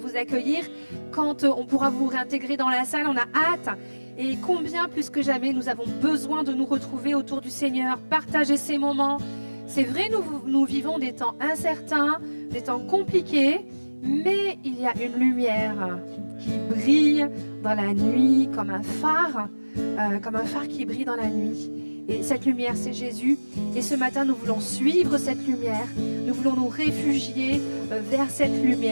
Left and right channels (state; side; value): inverted; both; correlation -1.00